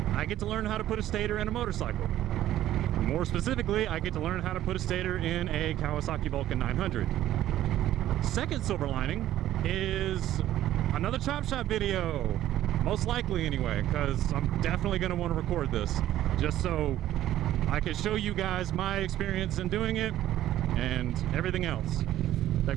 I get to learn how to put a stator in a motorcycle. More specifically, I get to learn how to put a stator in a Kawasaki Vulcan 900. Second silver lining is another Chop Shop video. Most likely anyway, because I'm definitely going to want to record this just so I can show you guys my experience in doing it and everything else that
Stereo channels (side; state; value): left; quieter; 13.1 dB